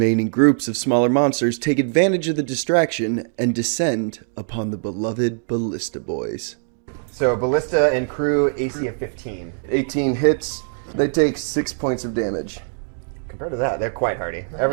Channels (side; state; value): left; silent; digital silence